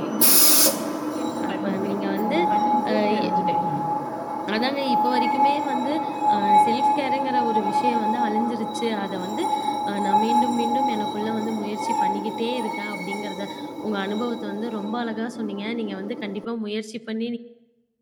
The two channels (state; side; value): identical; both; correlation 1.00